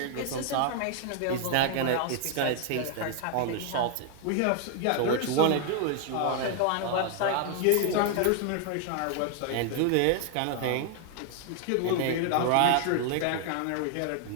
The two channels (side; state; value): both; different; correlation 0.00